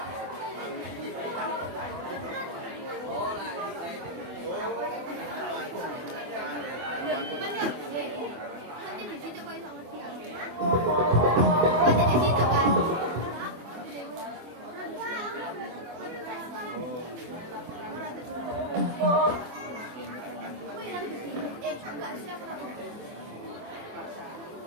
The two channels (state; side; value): late; left; 24 ms